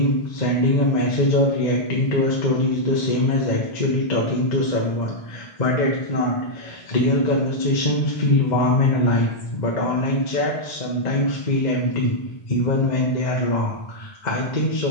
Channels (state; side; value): late; right; 1.9 ms